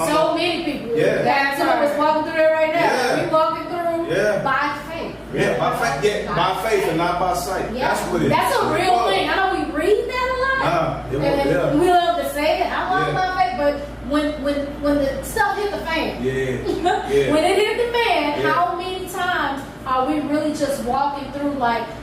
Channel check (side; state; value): both; identical; correlation 1.00